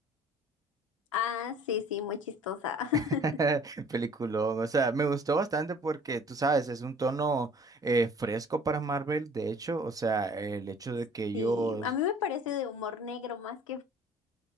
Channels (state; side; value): normal; both; correlation 0.52